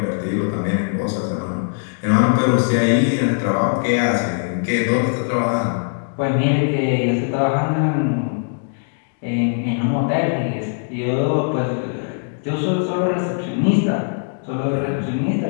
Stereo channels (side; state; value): right; silent; digital silence